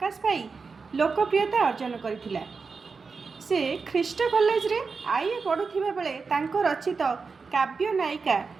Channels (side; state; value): left; quieter; 4.8 dB